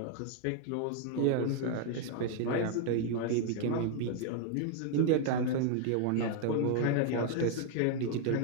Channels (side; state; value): both; different; correlation 0.00